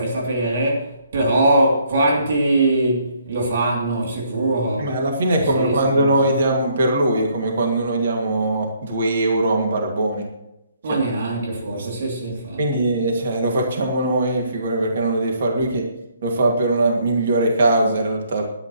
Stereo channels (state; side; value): inverted; both; correlation -0.67